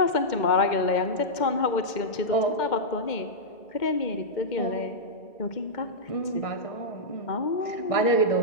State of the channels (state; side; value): late; right; 2.1 ms